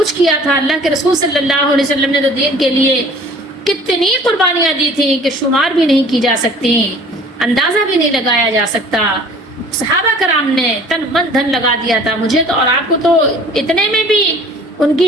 کیا تھا، اللہ کے رسول صلی اللہ علیہ وسلم نے تو دین کے لیے کتنی قربانیاں دی تھیں کہ شمار بھی نہیں کی جا سکتی، اندازہ بھی نہیں لگایا جا سکتا۔ صحابہ کرام نے تن من دھن لگا دیا تھا۔ مجھے تو اور آپ کو تو اتنے میں بھی ان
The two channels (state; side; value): normal; both; correlation 0.49